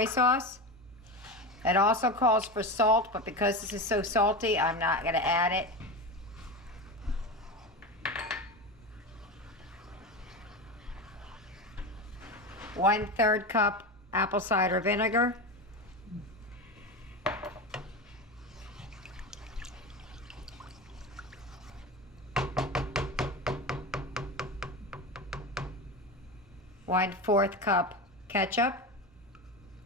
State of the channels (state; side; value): normal; both; correlation 0.22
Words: sauce. It also calls for salt, but because this is so salty, I'm not going to add it. One-third cup apple cider vinegar. One-fourth cup ketchup.